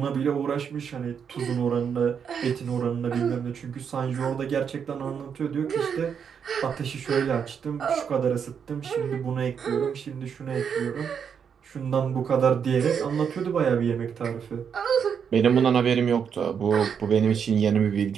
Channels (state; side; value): quieter; left; 7.2 dB